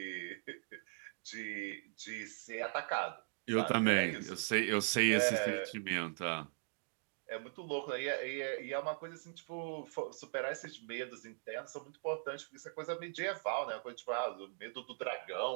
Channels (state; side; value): silent; left; digital silence